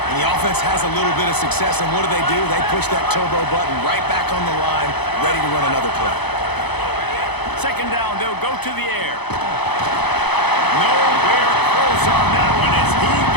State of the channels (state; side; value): late; right; 0.98 ms